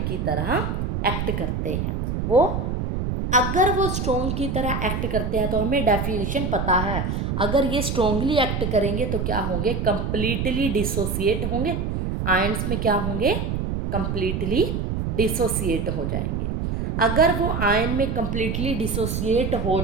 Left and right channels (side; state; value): right; noise; rumble, 1 dB below the sound